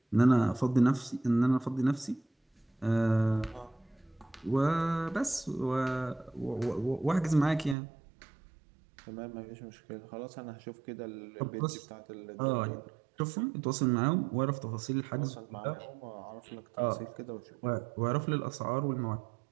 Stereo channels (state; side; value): drops out; left; at 7.8 s